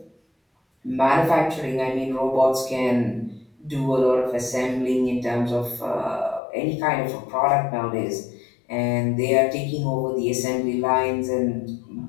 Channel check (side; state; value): right; drops out; at 6.4 s